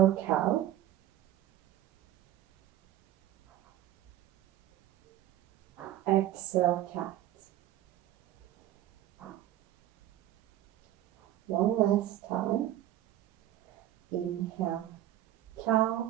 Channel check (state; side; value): quieter; left; 13.2 dB